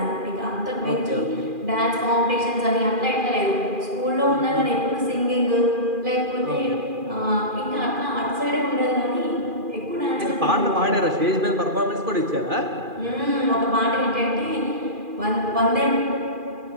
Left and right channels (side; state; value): left; late; 2.4 ms